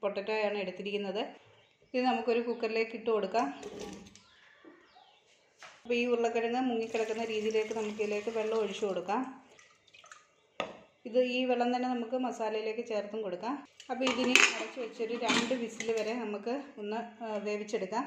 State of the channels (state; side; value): identical; both; correlation 1.00